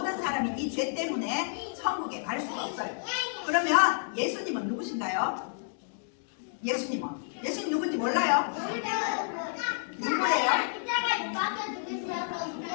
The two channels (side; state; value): right; silent; digital silence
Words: 사람이 이 죄 때문에 천국에 갈 수가 없어요. 그러면 예수님은 누구신가요? 예수님 누군지 몰라요? 누구예요?